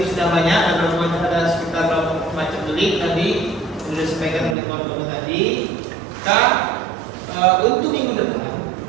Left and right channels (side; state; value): left; drops out; at 4.5 s